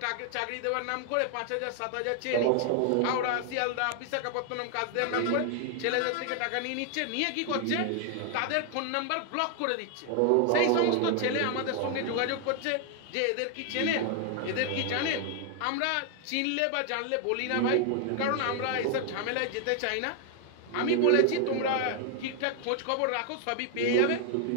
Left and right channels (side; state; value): both; different; correlation 0.00